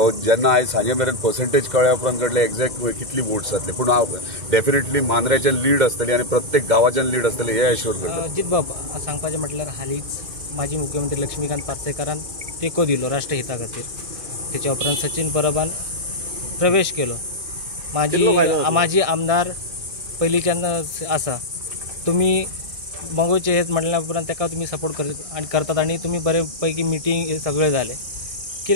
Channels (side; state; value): left; late; 1.6 ms